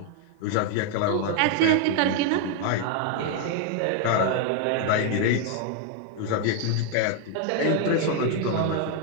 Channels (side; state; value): both; different; correlation 0.00